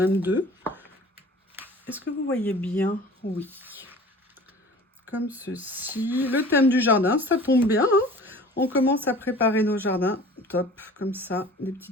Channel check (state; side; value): normal; both; correlation 0.44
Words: deux. Est-ce que vous voyez bien? Oui. Comme ceci. Le thème du jardin, ça tombe bien. Hein, on commence à préparer nos jardins. Top, comme ça, des